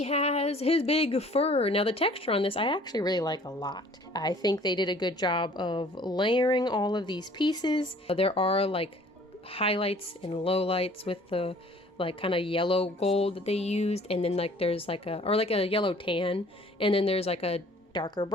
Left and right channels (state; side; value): normal; both; correlation 0.53